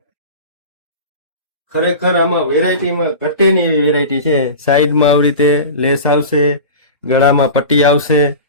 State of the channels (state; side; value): inverted; both; correlation -0.32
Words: ખરેખર આમાં વેરાયટીમાં ઘટે નહીં એવી વેરાયટી છે. સાઈડમાં આવી રીતે લેસ આવશે, ગળામાં પટ્ટી આવશે